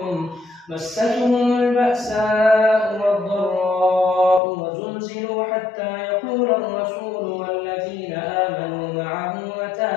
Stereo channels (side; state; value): right; drops out; at 4.4 s